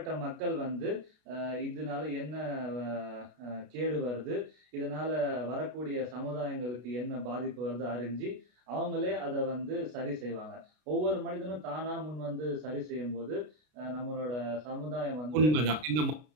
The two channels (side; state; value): left; late; 33 ms